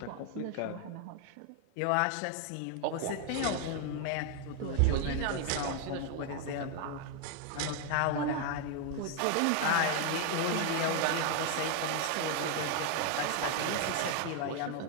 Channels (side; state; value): both; different; correlation 0.00